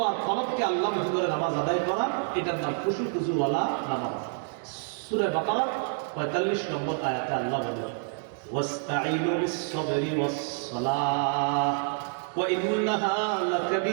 আর কলবকে আল্লাহমুখী করে নামাজ আদায় করা, এটার নাম খুশু খুজুওয়ালা নামাজ। সূরা বাকারা 45 নম্বর আয়াতে আল্লাহ বলেন ওয়াস্তাঈনু বিস-সাবরি ওয়াস-সালাহ ওয়া ইন্নাহা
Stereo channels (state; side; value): silent; left; 59 dB below the other